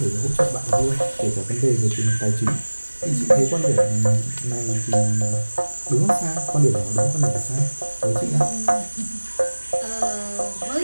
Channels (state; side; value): inverted; both; correlation -1.00